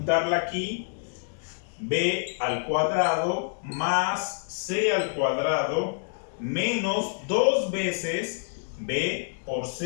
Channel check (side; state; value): right; silent; digital silence